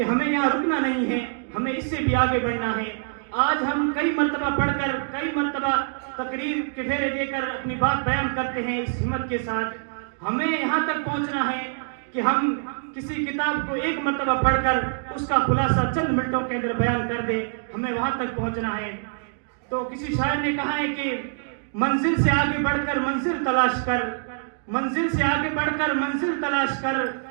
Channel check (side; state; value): left; silent; digital silence